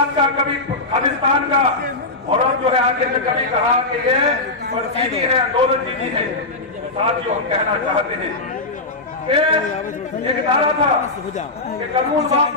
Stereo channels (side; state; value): right; quieter; 3.1 dB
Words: का, कभी खालिस्तान का, और अब जो है आगे में कभी कहा कि ये चीनी है, आंदोलन चीनी है। साथियों, हम कहना चाहते हैं एक नारा था कि कानून